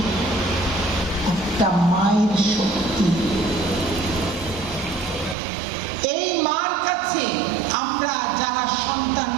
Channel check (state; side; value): drops out; left; at 5.4 s